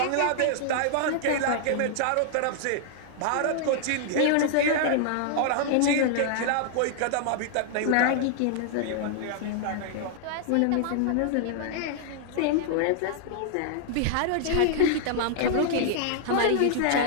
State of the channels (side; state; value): both; different; correlation -0.01